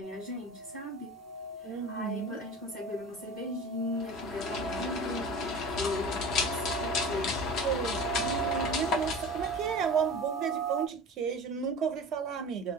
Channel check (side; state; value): both; normal; correlation 0.35